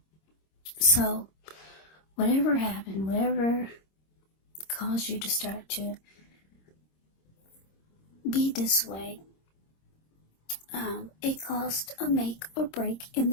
So, whatever happened, whatever caused you to start to be this way, it caused a make or break in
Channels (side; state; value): right; late; 26 ms